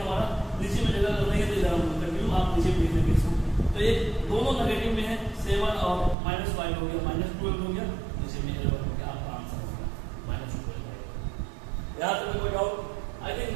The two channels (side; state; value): left; drops out; at 6.2 s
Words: नीचे में जगह नहीं है तो इधर हम कंटिन्यू आप नीचे लिख देंगे इसको। तो ये दोनों नेगेटिव में है, 7 और -5 हो गया, -12 हो गया, नीचे में L1 हो गया, आपका आंसर हो गया -12। यहाँ तक कोई डाउट आई थिंक